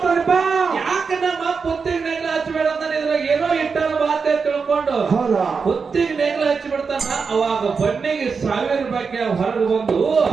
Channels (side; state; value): left; quieter; 5.3 dB